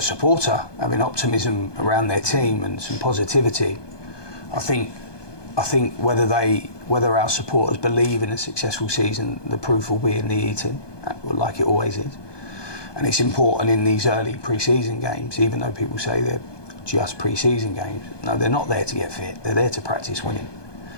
supporter, having optimism around their team and some positivity. I think whether our supporters believe in a successful season, the proof will be in the eating, like it always is. And it's important in these early pre-season games, even though people say they're just pre-season games. No, they're not there to get fit. They're there to practice winning,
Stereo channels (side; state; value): right; late; 1.2 ms